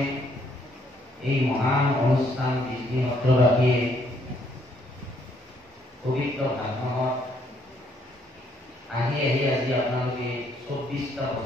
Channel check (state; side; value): normal; both; correlation 0.69